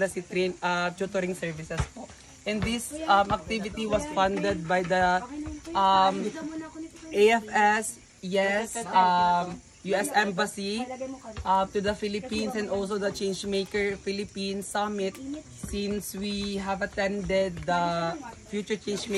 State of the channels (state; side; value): identical; both; correlation 1.00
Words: tutoring services po. And this activity was funded by the AFS, yes, US Embassy to the Philippines, and also the Changemaker Philippines Summit, since we have attended the Future